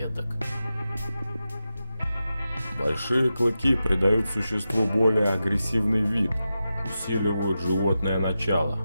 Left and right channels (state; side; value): inverted; both; correlation -0.91